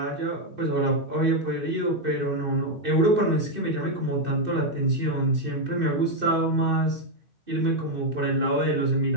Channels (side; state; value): left; late; 2.6 ms